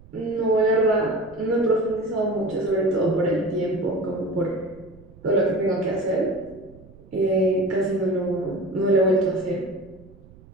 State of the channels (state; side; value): noise; right; rumble, 23 dB below the sound